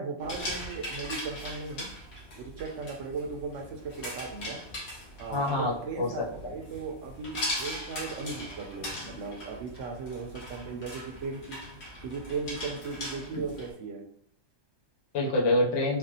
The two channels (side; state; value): right; late; 1.2 ms